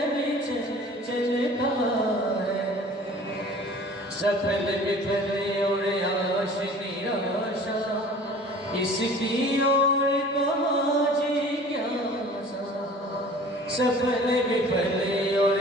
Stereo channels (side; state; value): both; normal; correlation 0.46